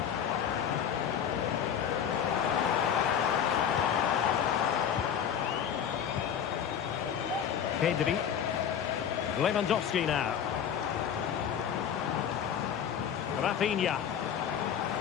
Pedri. Lewandowski now. Rafinha.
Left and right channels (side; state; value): right; quieter; 8.6 dB